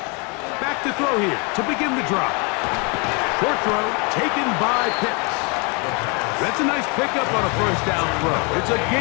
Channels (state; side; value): quieter; right; 32.5 dB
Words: Back to throw here to begin the drive. Short throw taken by Pitts. That's a nice pickup on a first down throw. It's a